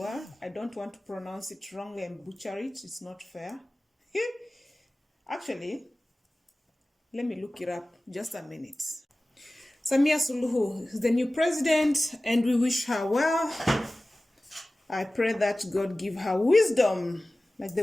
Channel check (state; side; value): normal; both; correlation 0.97